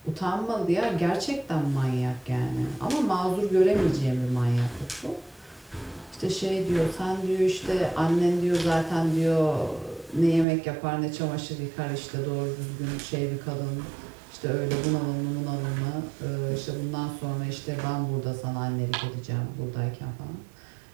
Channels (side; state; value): left; drops out; at 10.5 s